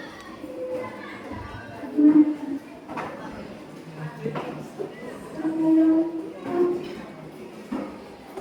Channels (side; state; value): both; identical; correlation 1.00